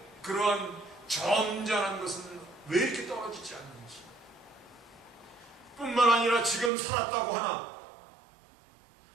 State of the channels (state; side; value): drops out; left; at 6.7 s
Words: 그러한 점잖은 것은 왜 이렇게 떨어지지 않는지, 뿐만 아니라 지금 살았다고 하나